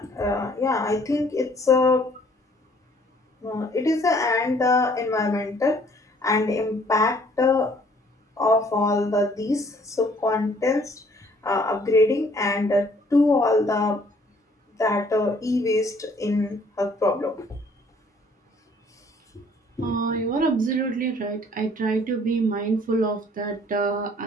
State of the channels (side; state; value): both; normal; correlation 0.59